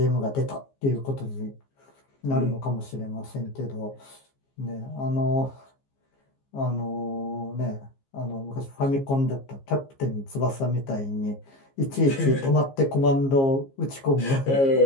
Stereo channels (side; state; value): right; late; 15 ms